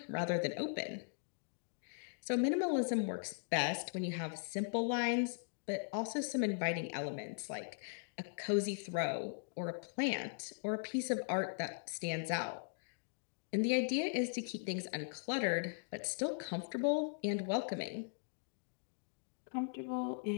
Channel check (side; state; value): right; silent; digital silence